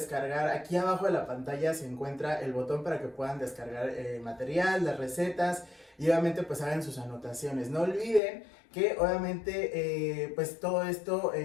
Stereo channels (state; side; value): drops out; right; at 8.2 s